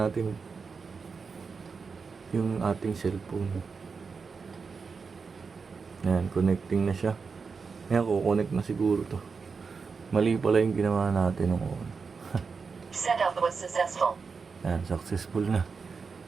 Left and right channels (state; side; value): quieter; left; 5.1 dB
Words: yung ating cellphone. Ayan, connecting na siya. Ayan, kukonect na siguro to. Mali pala yung ginawa natin nung una. Setup was successful. Ayan, successful na.